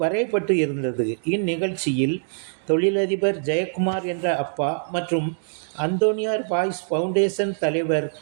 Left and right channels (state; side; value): silent; left; digital silence